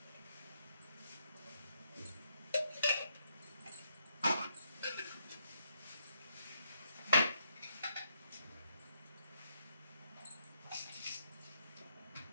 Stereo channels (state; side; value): inverted; both; correlation -0.76